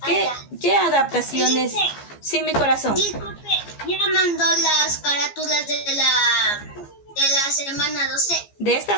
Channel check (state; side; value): late; right; 15 ms